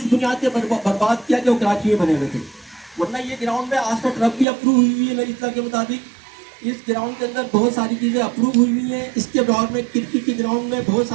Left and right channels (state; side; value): drops out; left; at 4.5 s